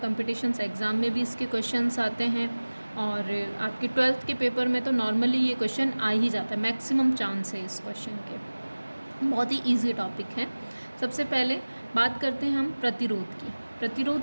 एग्ज़ाम में भी इसके क्वेश्चंस आते हैं और आपके 12th के पेपर में तो नॉर्मली ये क्वेश्चन आ ही जाता है, मैक्सिमम चांस है इस क्वेश्चन के। बहुत ही इजी टॉपिक है। सबसे पहले बात करते हैं हम प्रतिरोध की।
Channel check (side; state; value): both; inverted; correlation -1.00